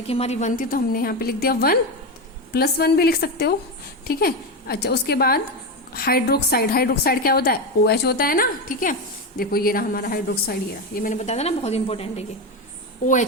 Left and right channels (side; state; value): both; normal; correlation 0.14